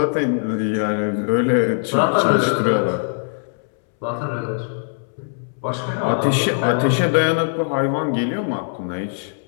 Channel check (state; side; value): silent; right; 65 dB below the other